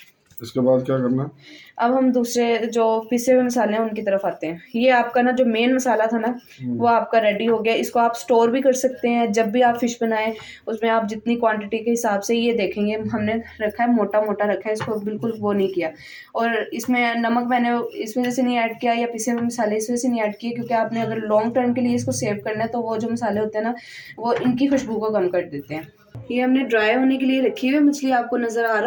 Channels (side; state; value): both; identical; correlation 1.00